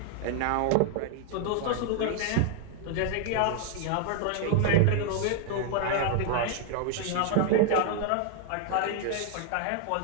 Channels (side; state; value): both; different; correlation 0.00